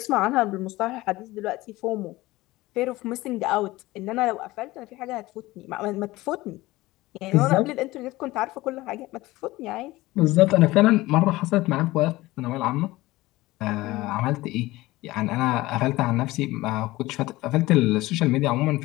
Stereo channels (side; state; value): right; quieter; 18.9 dB